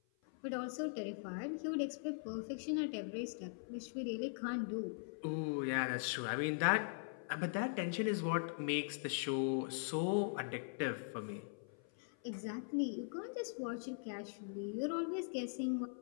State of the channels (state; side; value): silent; right; 50 dB below the other